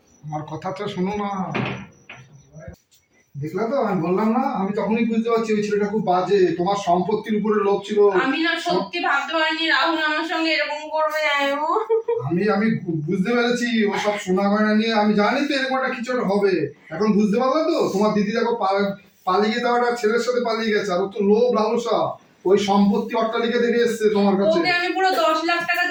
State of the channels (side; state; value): both; identical; correlation 1.00